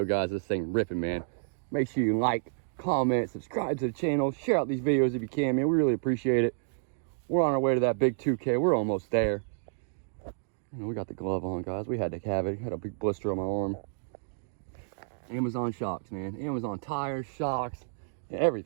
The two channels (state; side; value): silent; left; digital silence